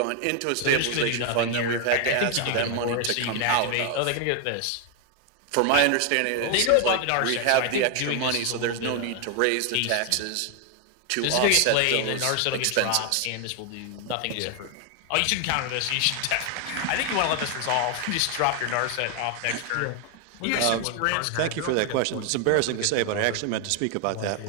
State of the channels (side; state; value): both; different; correlation 0.00